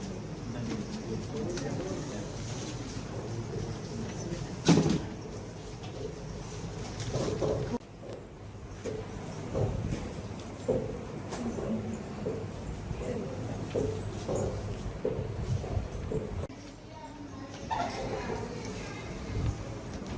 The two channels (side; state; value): both; identical; correlation 1.00